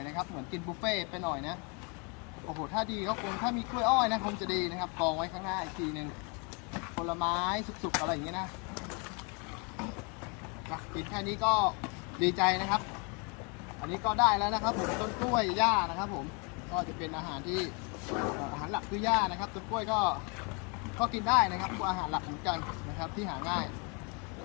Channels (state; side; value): quieter; right; 33.5 dB